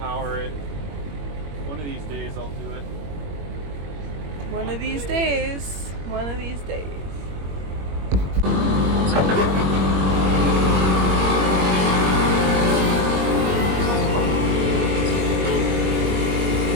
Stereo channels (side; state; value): left; late; 21 ms